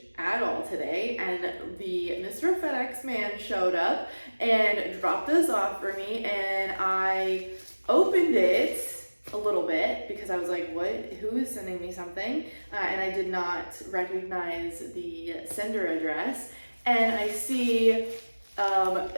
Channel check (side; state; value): both; inverted; correlation -1.00